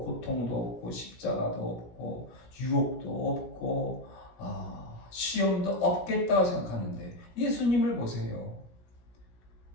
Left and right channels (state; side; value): late; right; 17 ms